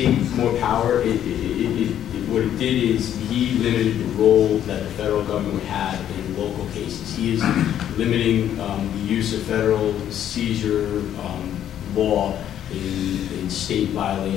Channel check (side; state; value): right; quieter; 10.6 dB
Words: more power. What it did is he limited the role that the federal government had in local cases. He is limiting the use of federal seizure law in state